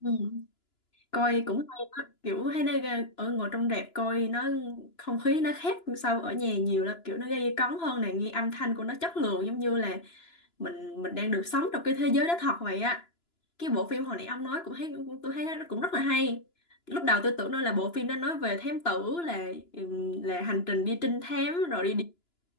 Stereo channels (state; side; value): late; right; 2.9 ms